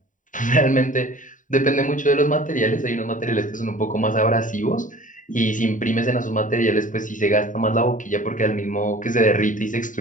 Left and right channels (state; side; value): late; right; 0.38 ms